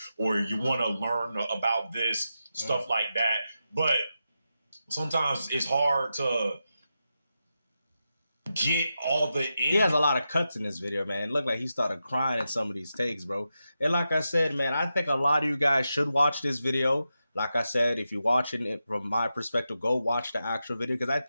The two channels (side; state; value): both; inverted; correlation -0.89